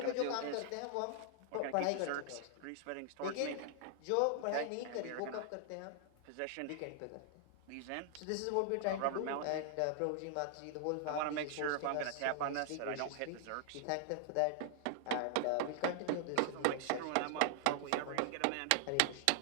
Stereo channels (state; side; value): different; both; correlation 0.00